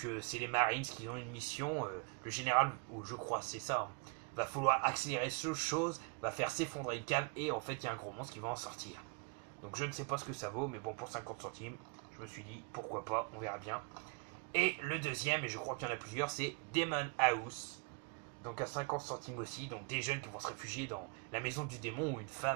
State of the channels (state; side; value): quieter; left; 35.0 dB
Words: c'est les Marines qui ont une mission. Le général, ou je crois c'est ça, va falloir accélérer ce chose, va faire s'effondrer une cave, et en fait il y a un gros monstre qui va en sortir. Donc je ne sais pas ce que ça vaut, mais bon, pour 50 centimes, je me suis dit pourquoi pas, on verra bien. Et le deuxième, et je crois qu'il y en a plusieurs, c'est Demon House. Donc à 50 centimes aussi, donc des jeunes qui vont se réfugier dans la maison du démon où une